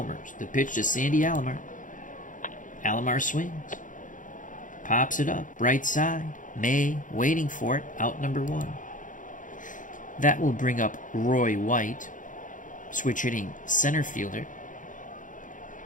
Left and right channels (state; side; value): late; right; 0.38 ms